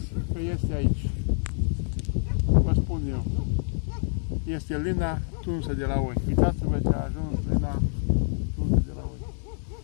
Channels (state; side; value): silent; right; digital silence